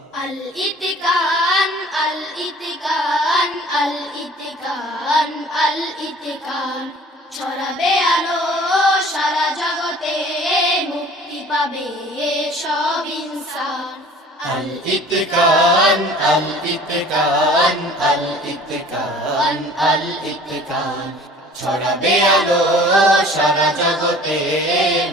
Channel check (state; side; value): normal; both; correlation 0.48